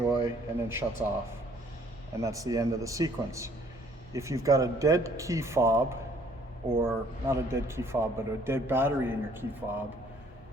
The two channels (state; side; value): normal; both; correlation 0.60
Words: and then shuts off. And that's the end of the sequence. If you've got a dead key fob, or not a dead key fob, but a dead battery in your key fob,